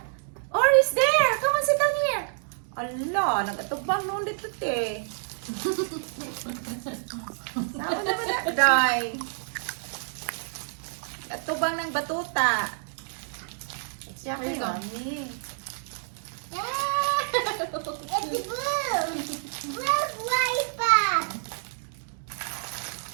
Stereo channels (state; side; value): silent; left; digital silence